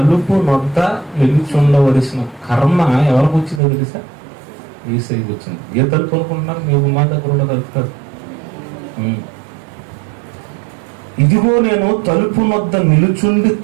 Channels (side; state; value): left; drops out; at 3.6 s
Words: నొద్ద నిలుచుండవలసిన కర్మ ఎవరికి వచ్చిందో తెలుసా? యేసయ్యకి వచ్చింది. ఏ తలుపు అనుకుంటున్నారు? మీ గుమ్మా దగ్గర ఉన్న తలుపు కాదు. ఇదిగో నేను తలుపు నొద్ద నిలుచుండి